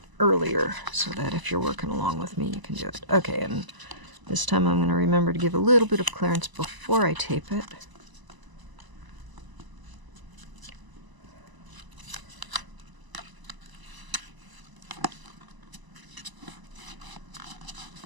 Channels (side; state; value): left; late; 1.0 ms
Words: earlier so that if you're working along with me, you can do it. Okay, and this time I'm going to remember to give a little bit of clearance before I tape it.